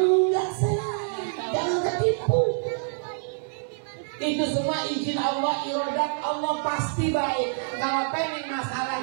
sayang, jangan ketipu. Itu semua izin Allah, iradat Allah pasti baik. Kalau pengen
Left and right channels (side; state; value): left; silent; digital silence